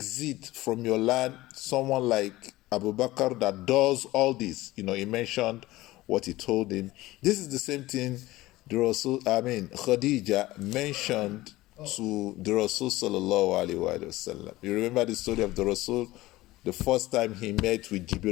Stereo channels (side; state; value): right; quieter; 18.0 dB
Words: from your land someone like Abu Bakr that does all this? He mentioned what he told him. This is the same thing Khadija mentioned to the Rasul sallallahu alaihi wasallam. You remember the story of the Rasul? The first time he met with